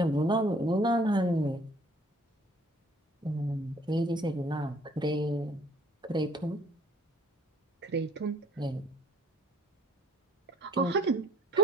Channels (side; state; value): both; normal; correlation 0.59